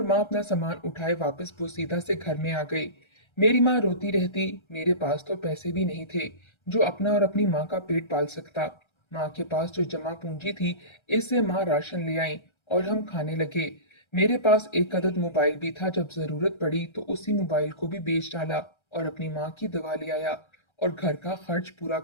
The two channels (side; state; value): right; late; 1.3 ms